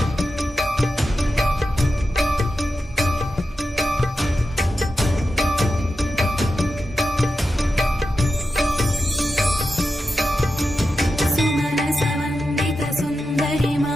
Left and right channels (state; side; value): normal; both; correlation 0.90